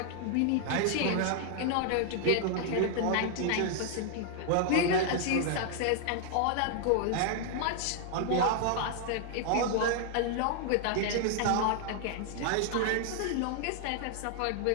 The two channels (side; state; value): both; different; correlation 0.00